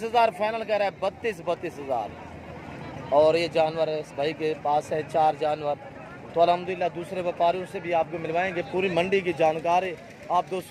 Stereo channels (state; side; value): identical; both; correlation 1.00